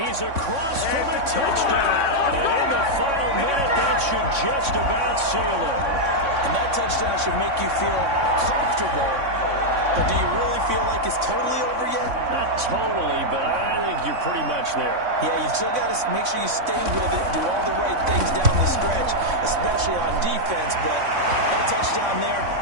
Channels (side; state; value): left; late; 3.6 ms